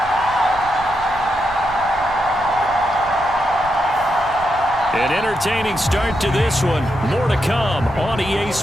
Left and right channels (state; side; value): noise; right; rumble, 16 dB below the sound